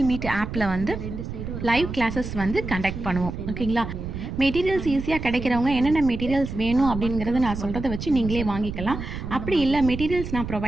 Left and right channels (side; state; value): right; noise; rumble, 7 dB below the sound